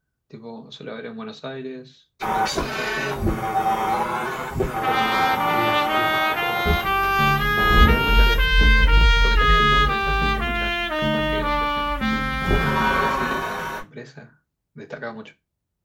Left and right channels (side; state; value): both; identical; correlation 1.00